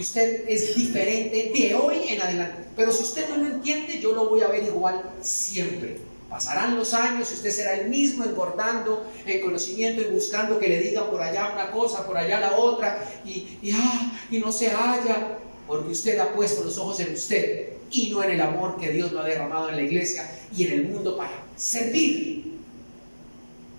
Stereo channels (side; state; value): both; inverted; correlation -1.00